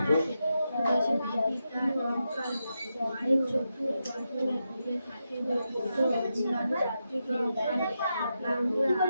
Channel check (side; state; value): both; inverted; correlation -0.87